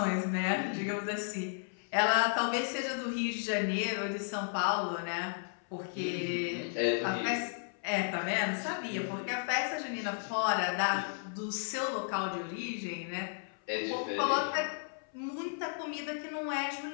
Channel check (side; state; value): right; silent; 55 dB below the other